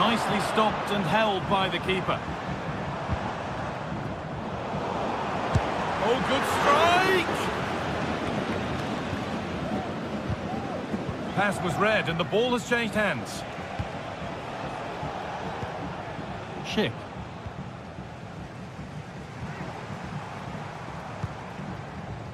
stopped and held by the keeper. Oh, good strike! Pass was read and the ball has changed hands. Schick.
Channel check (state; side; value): identical; both; correlation 1.00